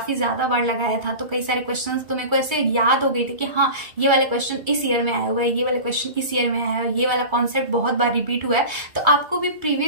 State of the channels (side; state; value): left; late; 2.3 ms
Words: ज्यादा बार लगाया था। तो कई सारे क्वेश्चन तो मेरे को ऐसे याद हो गए थे कि हाँ ये वाले क्वेश्चन इस ईयर में आया हुआ है, ये वाले क्वेश्चन इस ईयर में आया है, ये वाला कॉन्सेप्ट बहुत बार रिपीट हुआ है। तो आपको भी